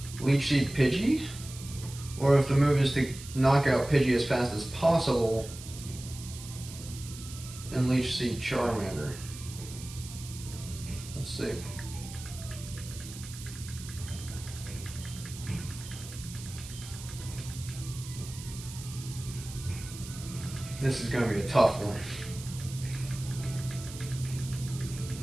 Leech Seed Pidgey, or if the move is to knock out Pidgey as fast as possible and Leech Seed Charmander. Let's see. This is going to be a tough one.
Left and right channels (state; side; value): noise; right; hiss, 13 dB below the sound